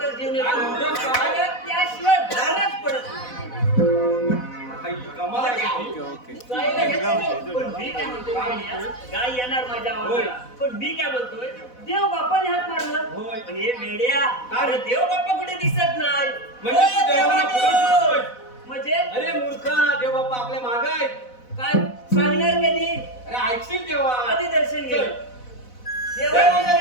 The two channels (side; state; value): right; late; 4.0 ms